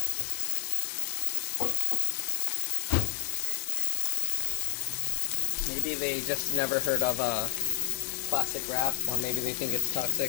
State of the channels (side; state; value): right; silent; digital silence